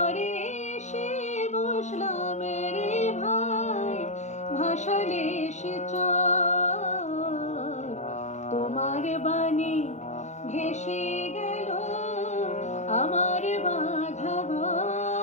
এসে বসলাম রে ভাই, ভাসালে সে চর। তোমার বাণী ভেসে গেল আমার বাঁধা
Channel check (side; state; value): right; late; 0.34 ms